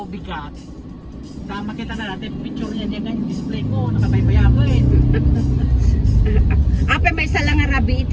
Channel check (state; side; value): identical; both; correlation 1.00